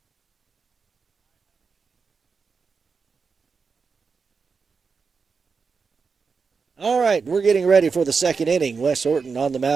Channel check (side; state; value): left; quieter; 5.2 dB